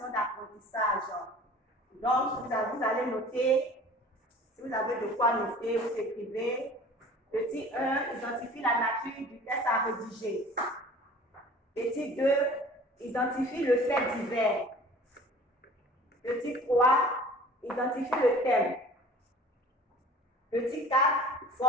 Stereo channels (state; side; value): normal; both; correlation 0.46